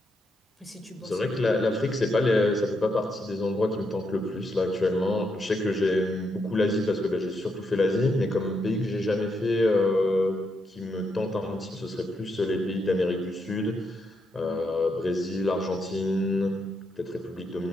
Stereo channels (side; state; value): both; normal; correlation 0.80